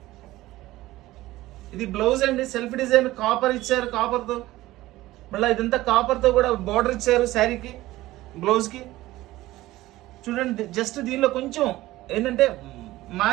ఇది బ్లౌజ్ అండి, సెల్ఫ్ డిజైన్ కాపర్ ఇచ్చారు, కాపర్తో. మళ్ళీ ఇదంతా కాపర్తో కూడా బార్డర్ ఇచ్చారు శారీకి, బ్లౌజ్కి. చూడండి జస్ట్ దీనిలో కొంచెం ఏంటంటే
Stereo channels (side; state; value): left; quieter; 17.0 dB